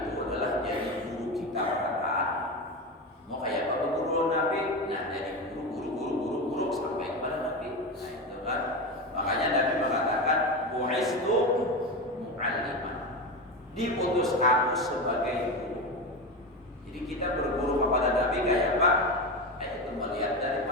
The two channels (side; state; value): both; normal; correlation 0.20